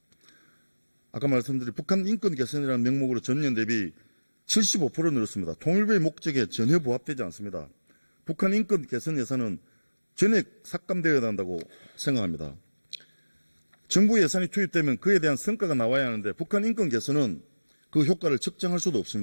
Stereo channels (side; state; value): both; inverted; correlation -1.00